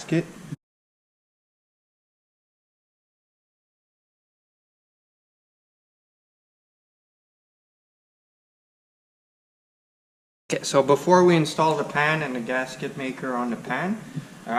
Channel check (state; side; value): identical; both; correlation 1.00